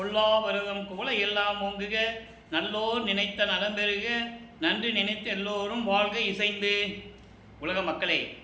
வருதம் குவளை எல்லாம் ஓங்குக, நல்லோர் நினைத்த நலம் பெறுக, நன்றி நினைத்த எல்லோரும் வாழ்க இசைந்து. உலக மக்களே,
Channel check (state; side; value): identical; both; correlation 1.00